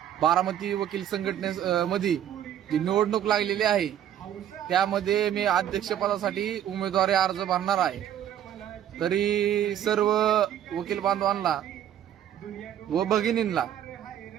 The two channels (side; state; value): left; quieter; 10.5 dB